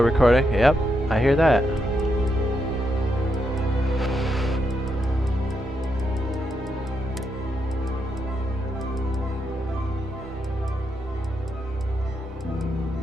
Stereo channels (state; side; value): normal; both; correlation 0.81